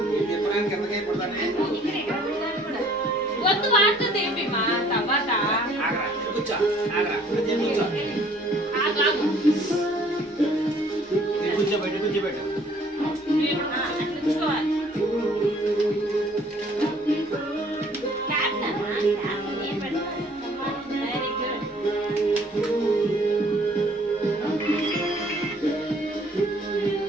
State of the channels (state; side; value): normal; both; correlation 0.57